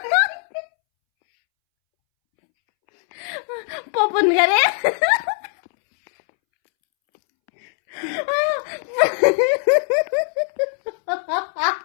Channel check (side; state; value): right; silent; 65 dB below the other